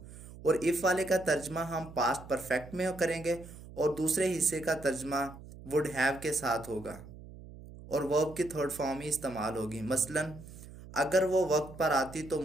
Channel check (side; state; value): right; noise; hum, 16 dB below the sound